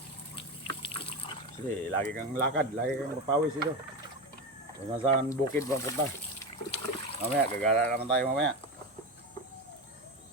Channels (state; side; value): normal; both; correlation 0.19